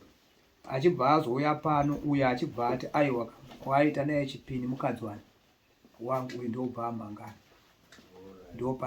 Achibva azouya pano uyo achibva ati aiwa waita naye chipini mukadzi wangu uyu ndobva amangana. Ndo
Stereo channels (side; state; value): both; identical; correlation 1.00